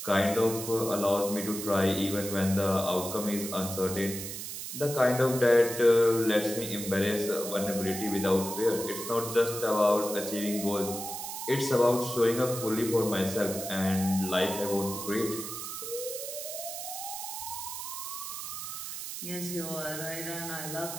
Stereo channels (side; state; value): right; noise; hiss, 7 dB below the sound